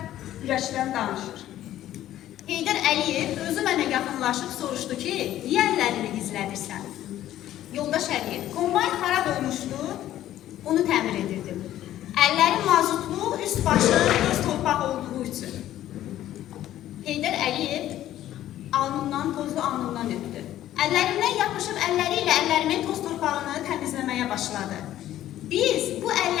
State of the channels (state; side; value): quieter; right; 13.0 dB